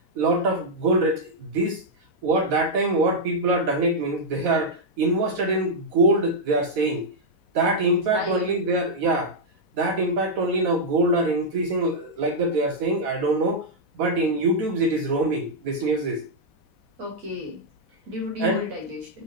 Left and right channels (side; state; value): left; late; 4.1 ms